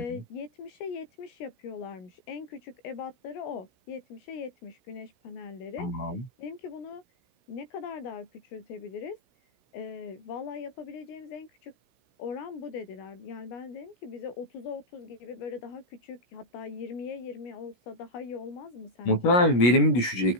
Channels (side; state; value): right; late; 17 ms